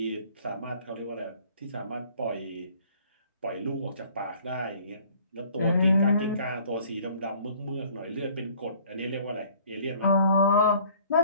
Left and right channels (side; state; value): both; inverted; correlation -0.55